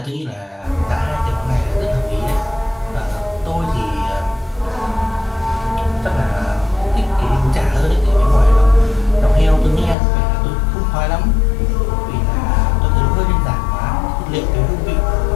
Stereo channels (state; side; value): drops out; right; at 10.0 s